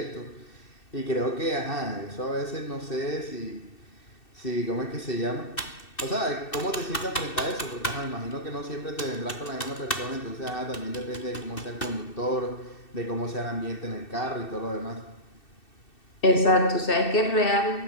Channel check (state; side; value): late; right; 2.6 ms